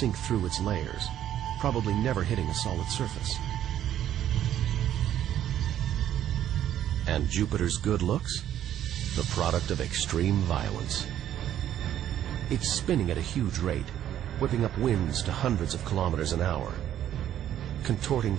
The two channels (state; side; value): quieter; left; 11.3 dB